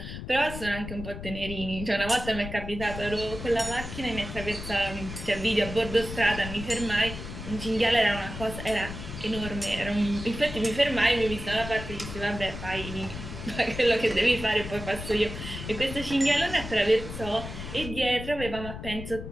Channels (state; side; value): noise; left; rumble, 9 dB below the sound